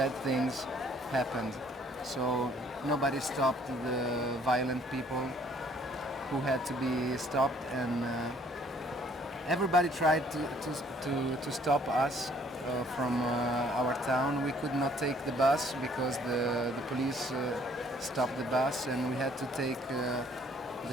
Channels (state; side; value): normal; both; correlation 0.61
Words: things happened. So nobody stopped the violent people who had to be stopped, and everybody tried to stop us from our town. We could not take the bus because the police stopped the bus, and we had to take